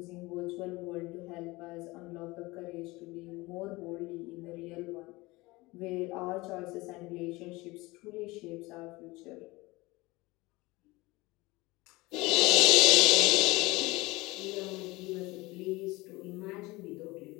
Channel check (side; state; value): right; quieter; 21.7 dB